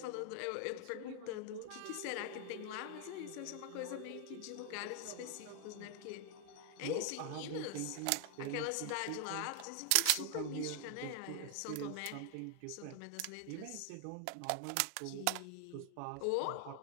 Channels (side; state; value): both; different; correlation 0.00